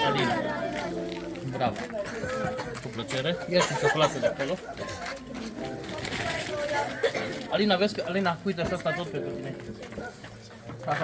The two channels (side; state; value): both; identical; correlation 1.00